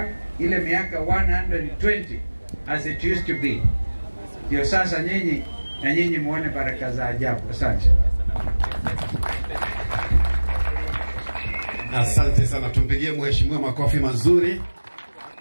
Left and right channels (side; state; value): both; inverted; correlation -1.00